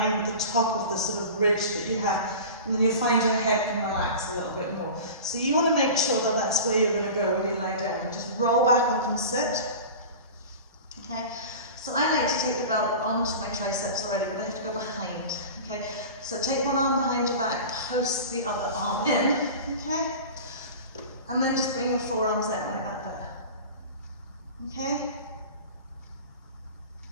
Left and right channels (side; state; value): both; inverted; correlation -0.34